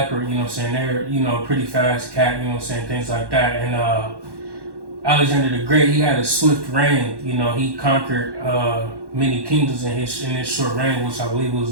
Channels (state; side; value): late; left; 1.1 ms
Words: you know what I'm saying, they're, you know, pretty fast cat, you know what I'm saying, things like that. And Alexander the Great, he had a swift reign, you know, he conquered many kingdoms in his short reign, which I believe